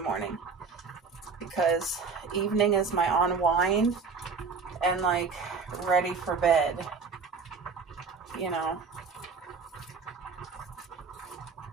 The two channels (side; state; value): left; quieter; 5.1 dB